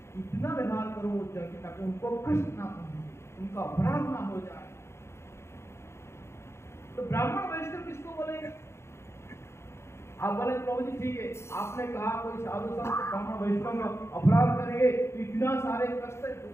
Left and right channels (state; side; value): late; right; 0.13 ms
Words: इतना व्यवहार करूं ताकि उनको कष्ट ना पहुंचे, उनका अपराध ना हो जाए। तो ब्राह्मण वैष्णव किसको बोलेंगे? आप बोले प्रभु जी ठीक है, आपने कहा कोई साधु संत ब्राह्मण वैष्णव का अपराध करेंगे तो इतना सारे कष्ट,